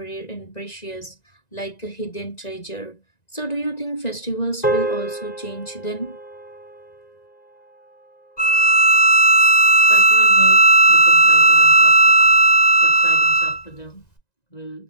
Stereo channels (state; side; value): late; right; 1.9 ms